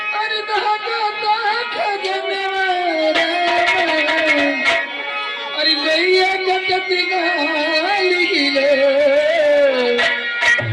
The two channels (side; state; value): both; identical; correlation 1.00